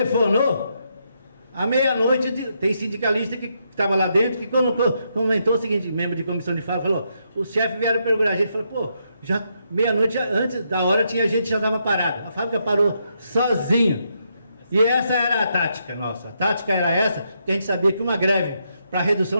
à meia-noite, tem sindicalista que estava lá dentro, que comentou o seguinte, membro de comissão de fábrica, falou, os chefes vieram procurar a gente, falou, pô, já meia-noite, antes da hora, tinha gente que já estava parada, a fábrica parou sozinha, e essa era a tática nossa, a tática era essa, que a gente sabia que uma greve para redução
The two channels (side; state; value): both; inverted; correlation -0.79